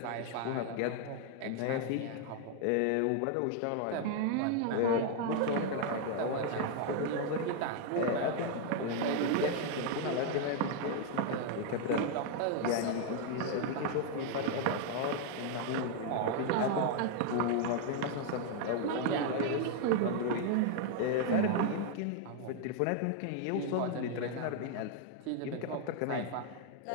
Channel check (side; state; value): both; different; correlation 0.00